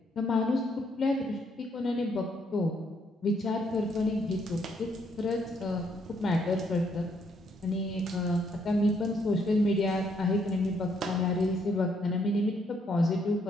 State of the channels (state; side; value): normal; both; correlation 0.72